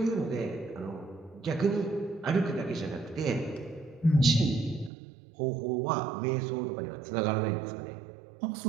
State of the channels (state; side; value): drops out; left; at 4.9 s